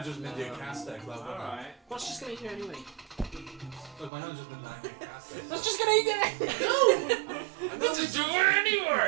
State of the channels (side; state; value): left; drops out; at 4.1 s